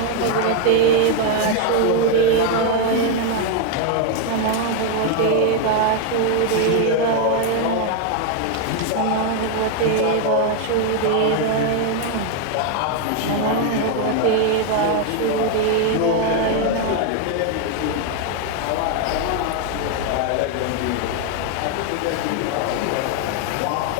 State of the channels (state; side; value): different; both; correlation 0.01